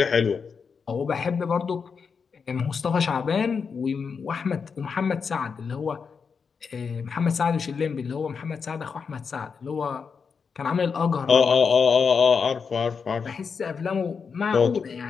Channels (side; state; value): right; quieter; 5.8 dB